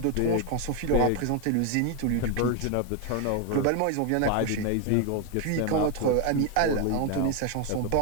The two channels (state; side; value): different; both; correlation 0.01